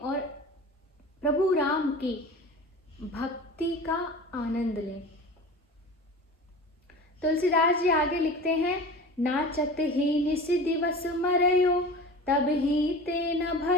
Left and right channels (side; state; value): both; normal; correlation 0.35